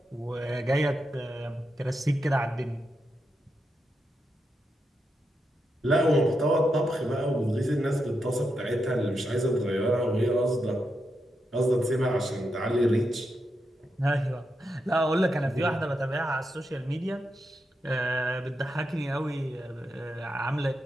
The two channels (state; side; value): normal; both; correlation 0.85